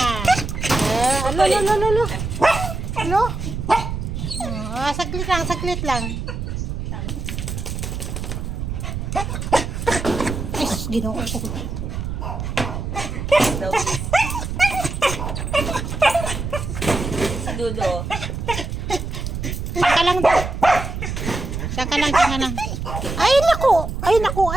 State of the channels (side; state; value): right; noise; rumble, 4 dB below the sound